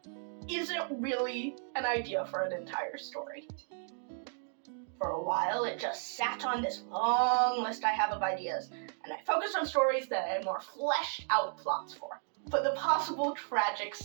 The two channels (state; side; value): silent; left; 55 dB below the other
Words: isn't really an idea for an entire story. For a while, it just sat on this long list I have of ideas, and I focused on stories that I had more fleshed out plots for. But the possible tragic